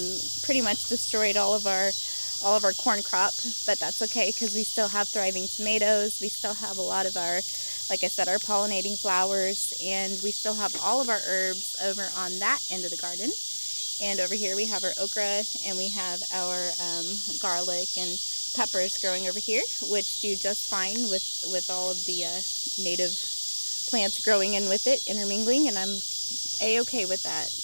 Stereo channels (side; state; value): both; inverted; correlation -1.00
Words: pretty much destroyed all of our corn crop, but that's okay because we still have thriving tomatoes. We still have a lot of our, like I said, our pollinating flowers, and we still have all of our herbs over on that end of the garden. And over here we have our okra, and we have our garlic and peppers growing over here, which do just fine with all of the native plants growing in with it, intermingling, and I'm a-okay with that.